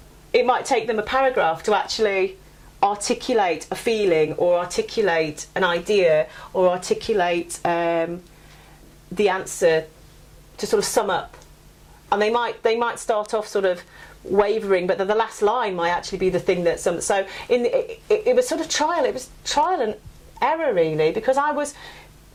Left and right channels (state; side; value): identical; both; correlation 1.00